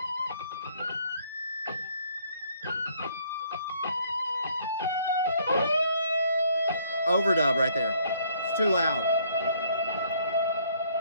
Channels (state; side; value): inverted; both; correlation -0.64